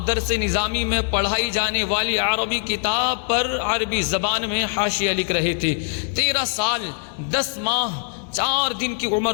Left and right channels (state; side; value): silent; right; 64 dB below the other